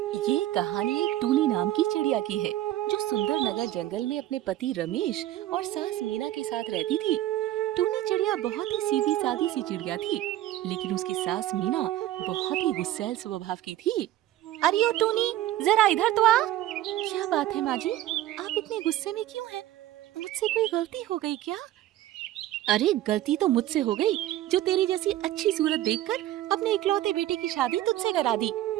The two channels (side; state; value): left; quieter; 14.1 dB